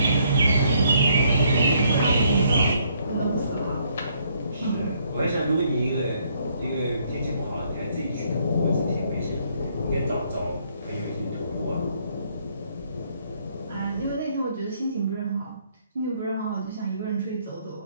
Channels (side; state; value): both; inverted; correlation -0.68